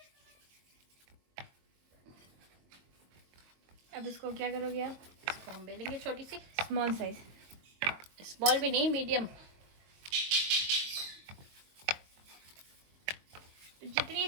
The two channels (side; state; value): left; late; 22 ms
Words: अब इसको क्या करोगे आप? इसको हम बेलेंगे छोटी सी, स्मॉल साइज, स्मॉल भी नहीं मीडियम। जितनी